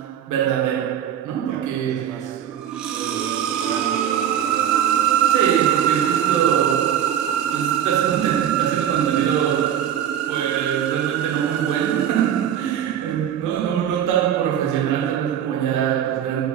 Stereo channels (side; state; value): left; quieter; 9.9 dB